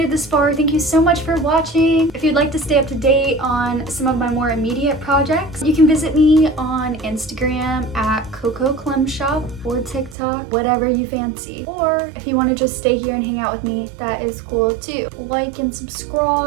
it this far, thank you so much for watching. If you'd like to stay up to date on some of my more immediate projects, you can visit me on Instagram at Coco Clem Shop or TikTok, whatever you fancy. Or if you want to just stay here and hang out with me, that is cool too. Like and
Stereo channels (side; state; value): left; drops out; at 10.2 s